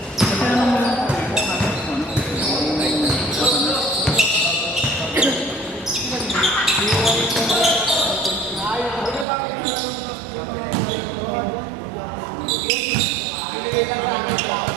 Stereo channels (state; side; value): drops out; left; at 9.2 s